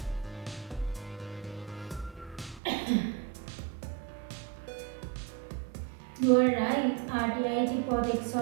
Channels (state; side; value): drops out; left; at 2.6 s